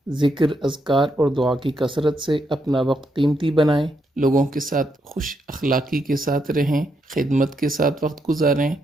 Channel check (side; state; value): both; normal; correlation 0.79